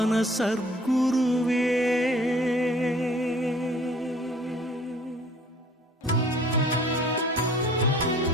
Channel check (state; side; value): normal; both; correlation 0.52